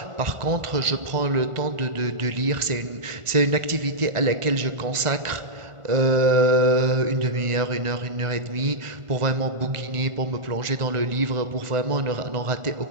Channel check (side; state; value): left; late; 1.4 ms